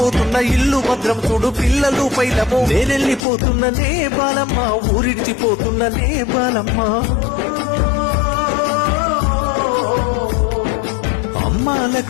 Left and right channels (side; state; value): right; drops out; at 3.2 s